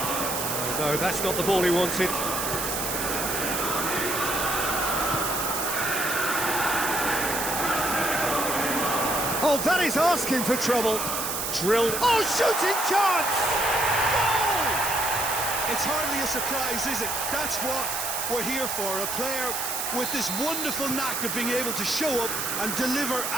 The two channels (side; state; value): right; noise; hiss, 2 dB below the sound